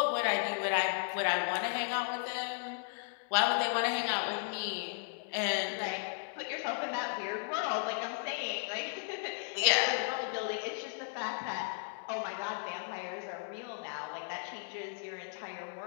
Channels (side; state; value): right; quieter; 39.8 dB